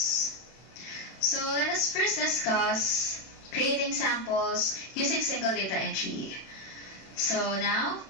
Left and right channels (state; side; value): late; right; 31 ms